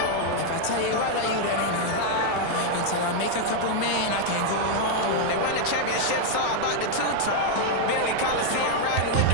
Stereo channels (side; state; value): both; different; correlation 0.00